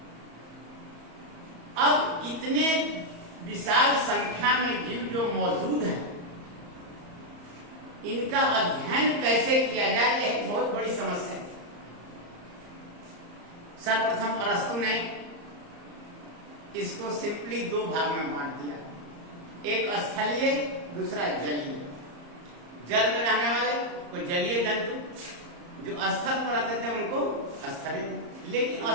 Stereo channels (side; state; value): left; late; 34 ms